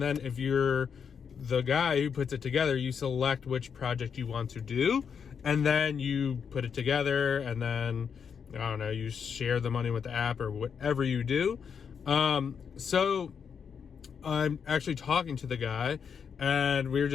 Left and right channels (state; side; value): quieter; right; 6.8 dB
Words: then if you're the guy who puts it together, you select which project you want to do, and then you put it together, and then I don't know, you share the money with the app or whatever you do. So I'm actually talking to the guy, and we were